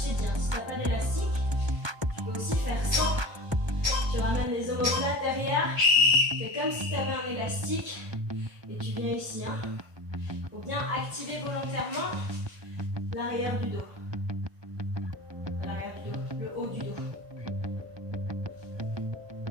t'ai dit, hein, si tu n'as pas d'élastique, tu peux aussi faire sans. Tu ramènes les omoplates derrière. Fais comme si tu avais un élastique. Et tu viens ici. Il faut bien activer volontairement l'arrière du dos. L'arrière du dos, le haut du dos.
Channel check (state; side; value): late; left; 1.2 ms